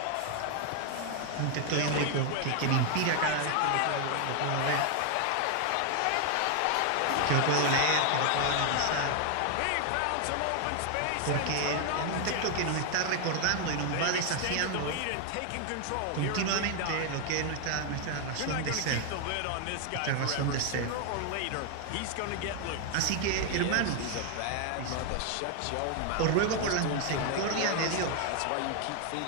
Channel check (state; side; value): different; both; correlation 0.00